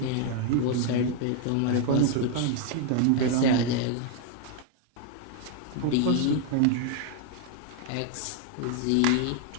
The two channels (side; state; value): both; different; correlation 0.00